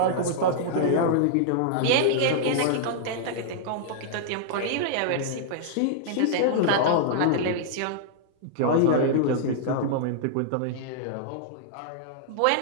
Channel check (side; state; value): both; different; correlation -0.01